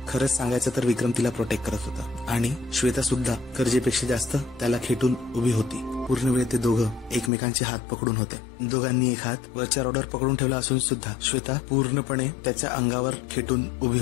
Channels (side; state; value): right; drops out; at 7.3 s